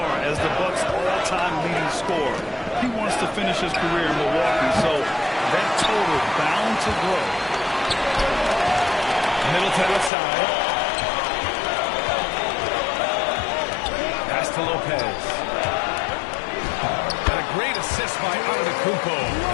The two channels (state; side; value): drops out; right; at 10.1 s